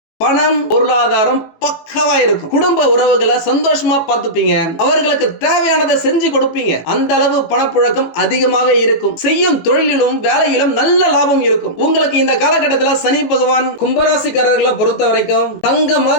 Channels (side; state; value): right; late; 18 ms